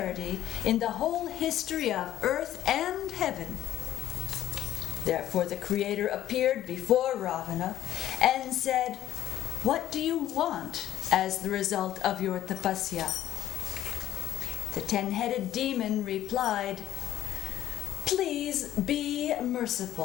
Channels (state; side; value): quieter; right; 12.3 dB